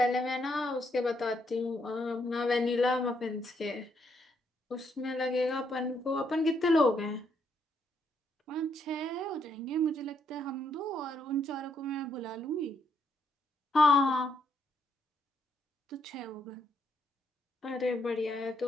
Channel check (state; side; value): normal; both; correlation 0.75